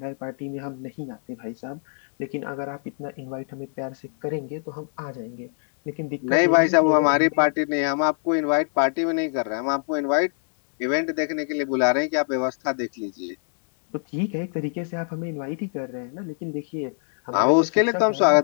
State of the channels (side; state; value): right; silent; 62 dB below the other